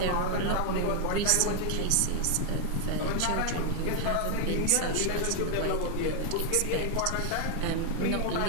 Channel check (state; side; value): different; both; correlation 0.00